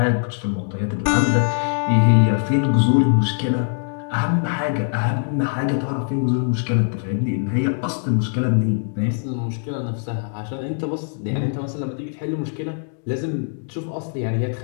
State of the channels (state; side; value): silent; right; digital silence